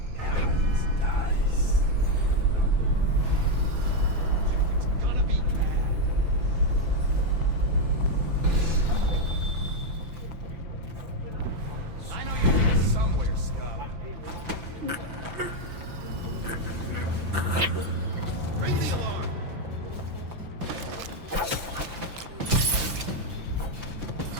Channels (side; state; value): left; late; 5.9 ms